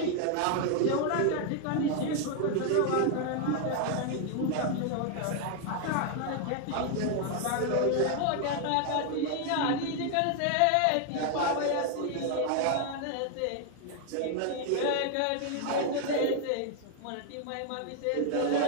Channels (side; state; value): both; different; correlation 0.00